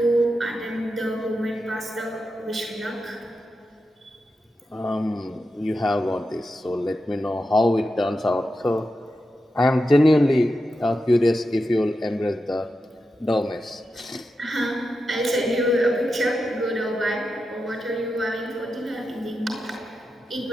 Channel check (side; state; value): both; normal; correlation 0.89